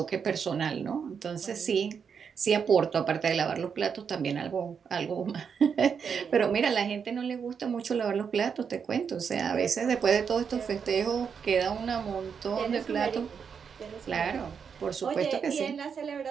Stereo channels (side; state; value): left; quieter; 6.7 dB